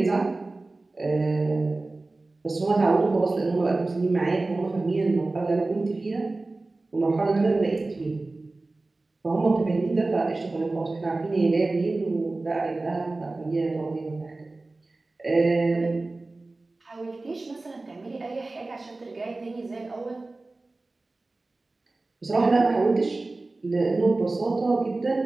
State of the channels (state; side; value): quieter; left; 3.2 dB